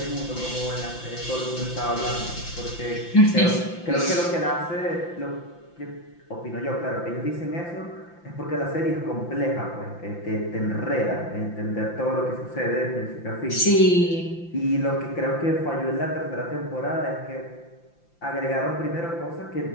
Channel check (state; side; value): late; right; 5.8 ms